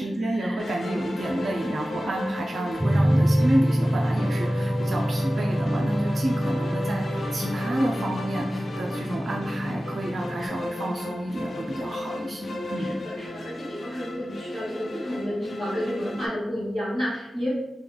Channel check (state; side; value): normal; both; correlation 0.95